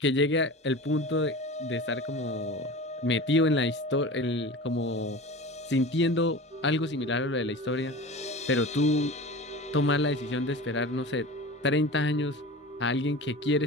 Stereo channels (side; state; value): both; normal; correlation 0.34